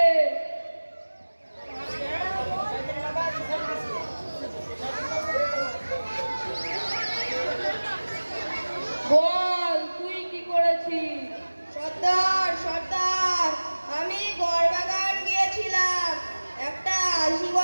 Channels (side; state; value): both; inverted; correlation -1.00